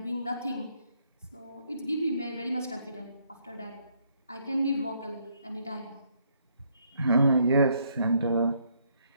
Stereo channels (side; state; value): both; inverted; correlation -0.71